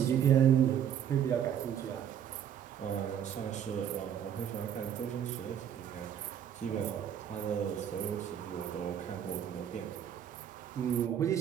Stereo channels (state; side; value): quieter; left; 9.2 dB